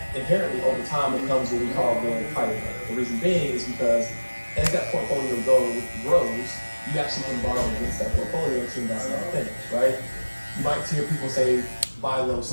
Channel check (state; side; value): inverted; both; correlation -1.00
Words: inherently over time becomes what we call the private bank. The reason being is because as that portfolio grows, you actually can borrow against that portfolio to invest in other things, right? You might hear people say, buy low,